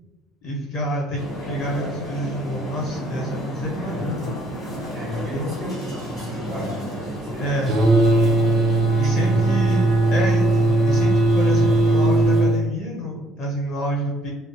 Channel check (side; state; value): both; normal; correlation 0.68